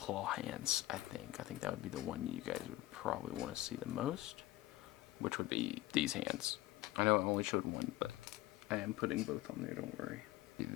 hands, I think. I think that would be the one you guys would probably want to see the most, which would be these hands. I know I only showed one, but I am putting both on there, don't worry.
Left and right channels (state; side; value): quieter; right; 16.6 dB